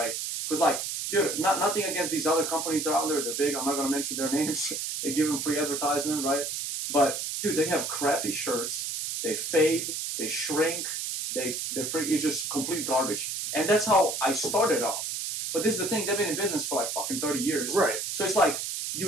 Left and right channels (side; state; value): right; noise; hiss, 3 dB below the sound